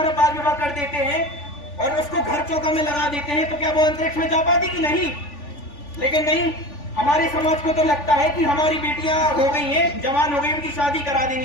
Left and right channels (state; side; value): late; right; 3.4 ms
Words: बाल विवाह कर देते हैं और उसको घर चौका में लगा देते हैं तो क्या वो अंतरिक्ष में जा पाती कि नहीं। लेकिन नहीं, हमारे समाज को तो लगता है कि हमारी बेटियां हो गई हैं, जवान हो गई, उनकी शादी करा